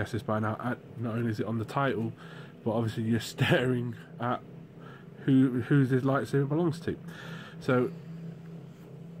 this by now. Not only is it on the title, but obviously you're staring at who this lightsaber belongs to. So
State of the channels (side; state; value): both; identical; correlation 1.00